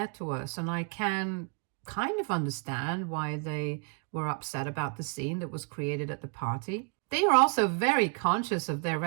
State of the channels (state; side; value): quieter; left; 37.7 dB